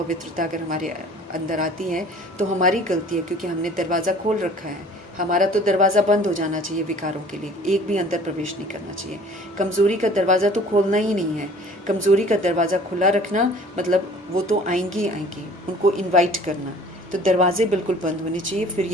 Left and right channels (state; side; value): normal; both; correlation 0.50